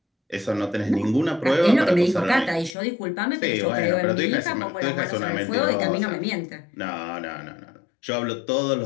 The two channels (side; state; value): right; drops out; at 2.8 s